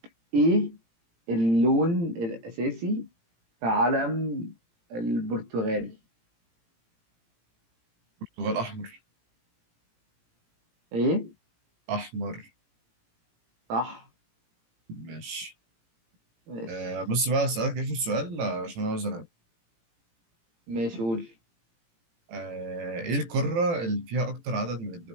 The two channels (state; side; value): late; left; 18 ms